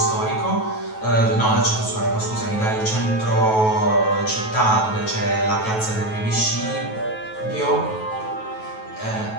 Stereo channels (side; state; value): right; late; 9.2 ms